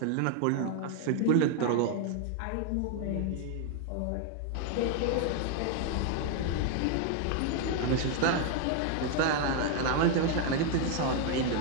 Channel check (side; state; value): both; different; correlation 0.00